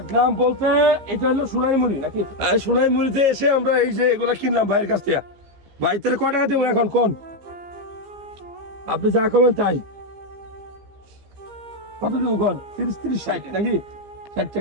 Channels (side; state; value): left; late; 15 ms